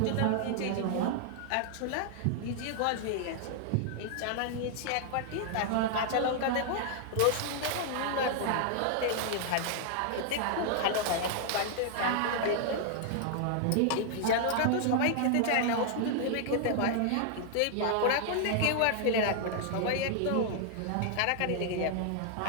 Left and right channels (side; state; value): both; different; correlation 0.00